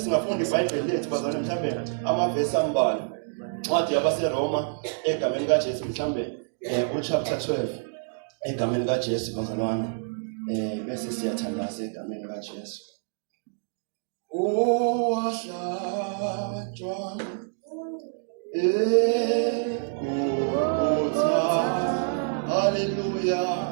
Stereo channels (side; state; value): left; silent; digital silence